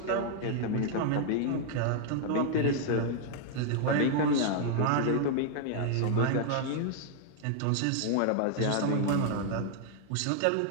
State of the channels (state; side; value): different; both; correlation -0.01